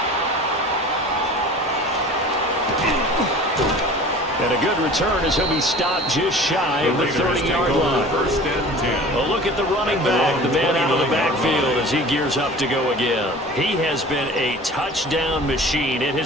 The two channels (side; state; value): both; normal; correlation 0.42